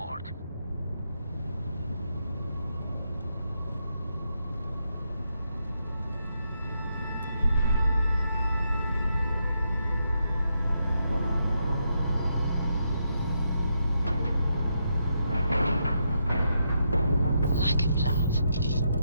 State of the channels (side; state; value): both; inverted; correlation -0.81